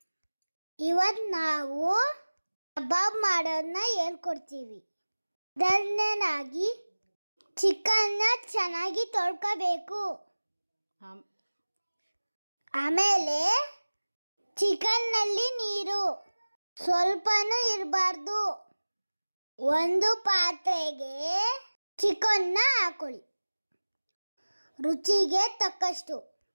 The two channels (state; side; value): inverted; both; correlation -1.00